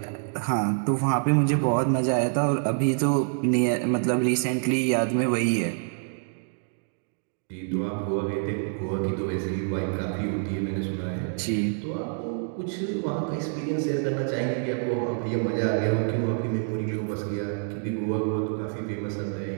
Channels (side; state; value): left; silent; 60 dB below the other